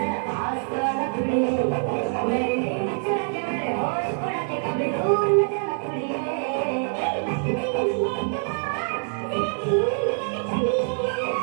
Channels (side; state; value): left; silent; digital silence